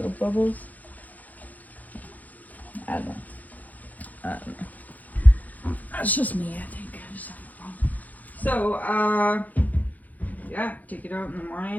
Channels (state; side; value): late; right; 0.079 ms